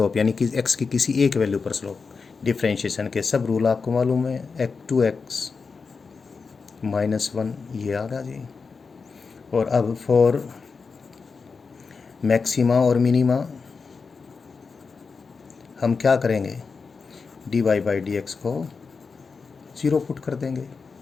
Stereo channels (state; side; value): quieter; right; 4.9 dB